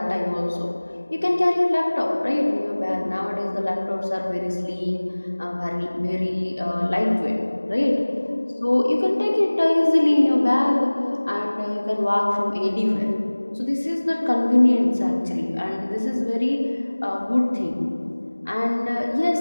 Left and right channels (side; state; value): both; inverted; correlation -1.00